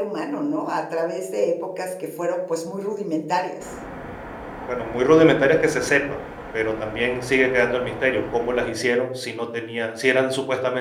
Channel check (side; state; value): both; identical; correlation 1.00